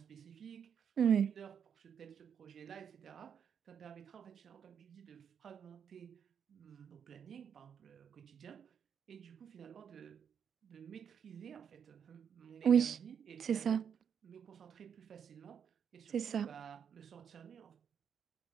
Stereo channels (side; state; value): left; quieter; 7.7 dB